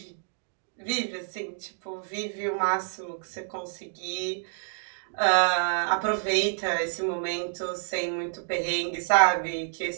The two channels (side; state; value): left; silent; digital silence